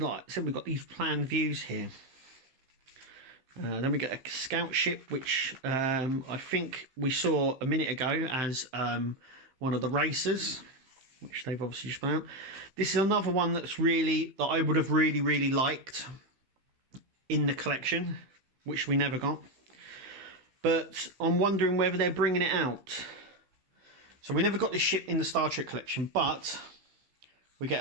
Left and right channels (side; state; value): left; late; 15 ms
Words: said we've got these planned views here. Then we get a scout ship, which I think we saw a minute ago as one of the racers, which they've obviously just put out. This is another one that I would have really liked in the collection, which we never got. But I'm wondering whether they're bringing it out. So we never got this ship in the Star Trek collection, but we get